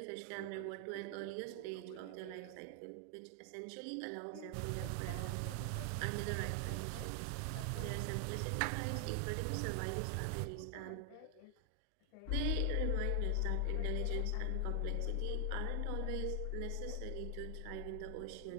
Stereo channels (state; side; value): different; both; correlation 0.00